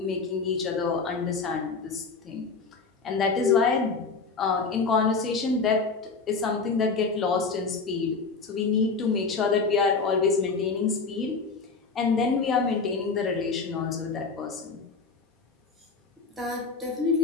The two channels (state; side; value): quieter; right; 4.6 dB